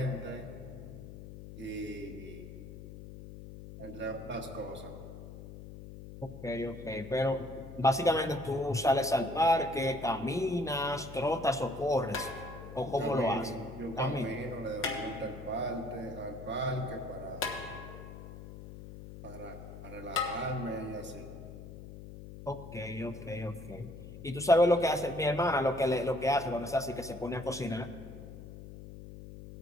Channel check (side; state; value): left; noise; hum, 13 dB below the sound